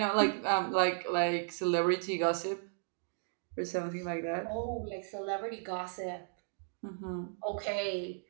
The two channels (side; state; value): left; silent; digital silence